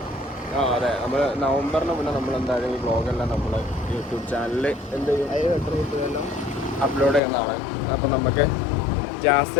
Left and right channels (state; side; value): drops out; right; at 7.2 s